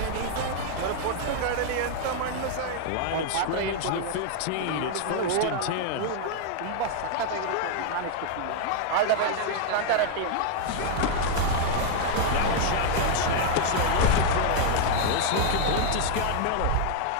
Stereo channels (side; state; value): both; different; correlation 0.00